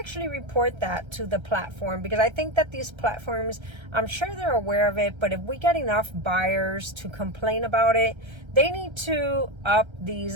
report that to the platform, because I think that these platforms, I'm sure they're aware of it, but if we get enough buyers to complain about it, they need to up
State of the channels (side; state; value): left; late; 1.3 ms